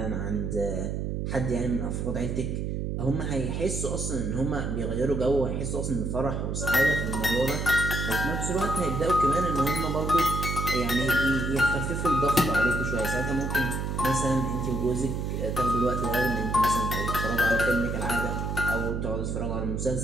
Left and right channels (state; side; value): noise; right; hum, 2 dB below the sound